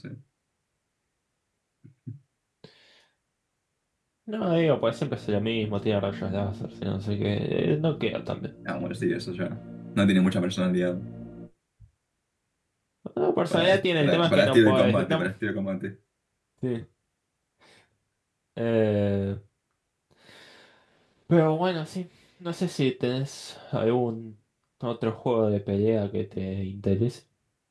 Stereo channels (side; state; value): both; identical; correlation 1.00